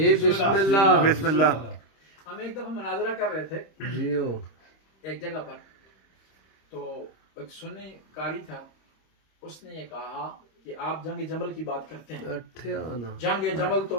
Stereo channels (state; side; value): late; right; 26 ms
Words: بسم اللہ. بسم اللہ. ہم ایک دفعہ مناظرہ کر رہے تھے جیو ایک جگہ پر، تو ایک سنی قاری تھا، اس نے یہ کہا کہ آپ جنگ جمل کی بات کرتے ہیں. جنگ جمل تو